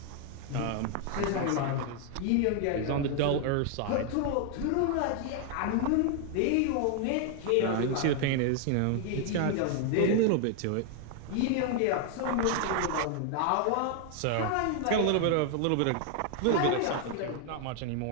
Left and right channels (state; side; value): different; both; correlation 0.00